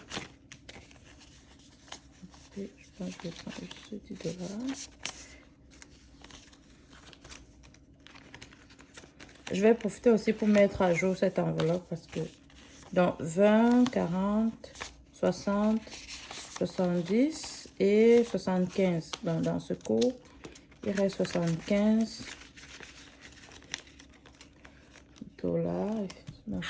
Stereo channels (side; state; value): both; identical; correlation 1.00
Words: Et je pense que je vais prendre juste 10 $. Je vais profiter aussi pour mettre à jour cette enveloppe parce que donc 20, 40, 60, 70 et 75. Donc dans ce cours, il reste 75 $. Ma